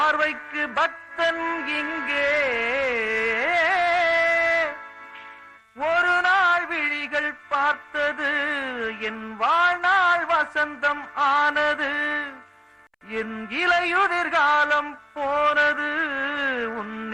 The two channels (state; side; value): identical; both; correlation 1.00